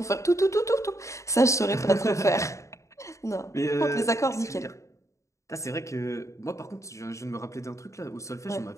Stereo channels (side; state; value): right; late; 0.15 ms